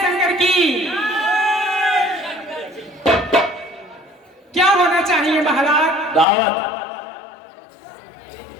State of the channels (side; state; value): right; drops out; at 6.2 s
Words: शंकर की। क्या होना चाहिए महाराज? दावत